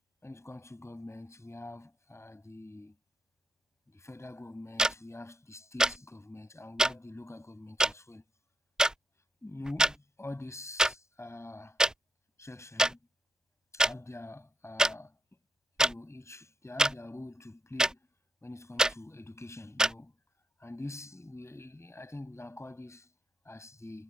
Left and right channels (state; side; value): normal; both; correlation 0.77